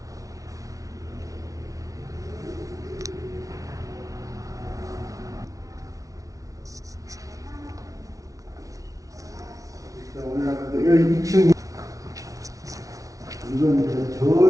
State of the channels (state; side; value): late; left; 0.17 ms